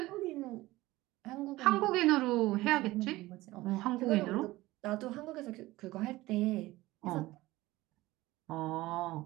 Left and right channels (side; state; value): left; quieter; 18.4 dB